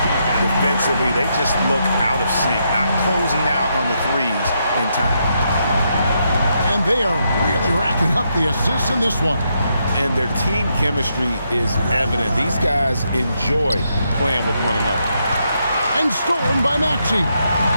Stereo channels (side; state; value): both; inverted; correlation -0.79